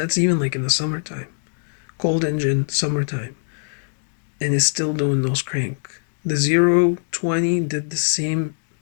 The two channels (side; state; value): right; silent; digital silence